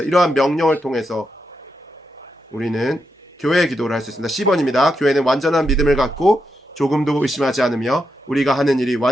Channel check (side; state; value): both; normal; correlation 0.84